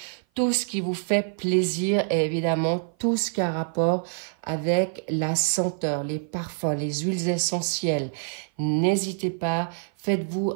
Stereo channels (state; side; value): silent; left; 55 dB below the other